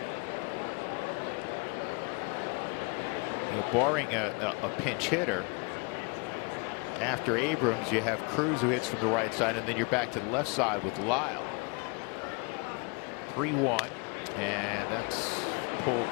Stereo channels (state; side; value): quieter; right; 31.8 dB